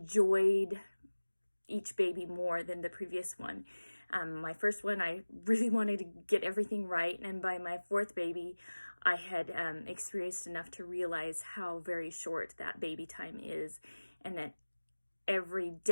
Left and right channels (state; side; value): inverted; both; correlation -1.00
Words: each baby more than the previous one. My first one, I really wanted to get everything right, and by my 4th baby I had experienced enough to realize how very short that baby time is, and that every